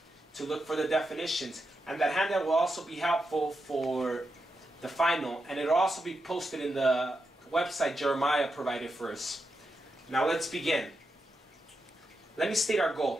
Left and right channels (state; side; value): normal; both; correlation 0.86